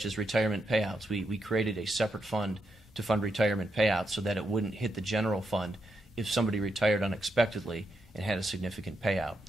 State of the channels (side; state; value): both; normal; correlation 0.82